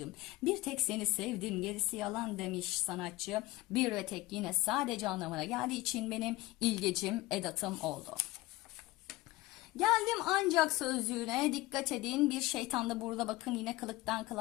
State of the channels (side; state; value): right; quieter; 19.1 dB